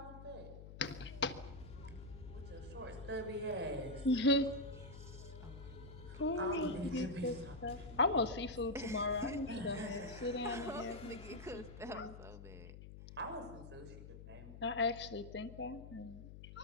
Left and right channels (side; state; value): left; noise; hum, 13 dB below the sound